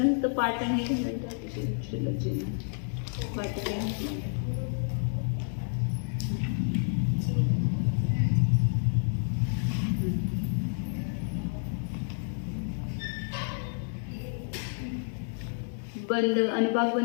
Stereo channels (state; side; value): silent; right; digital silence